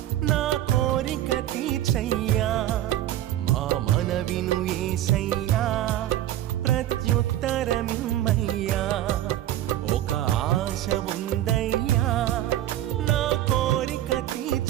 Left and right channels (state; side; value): quieter; left; 13.1 dB